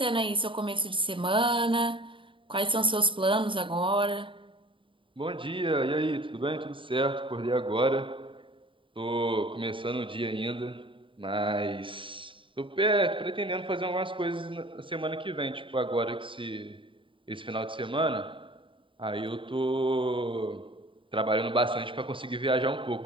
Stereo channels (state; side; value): late; left; 0.25 ms